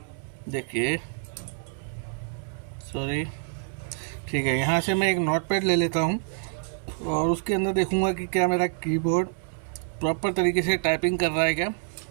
देखिए सॉरी, ठीक है, यहाँ से मैं एक नोटपैड ले लेता हूँ और उसके अंदर देखूँगा कि क्या मेरा कीबोर्ड प्रॉपर तरीके से टाइपिंग कर रहा है क्या।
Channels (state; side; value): silent; left; digital silence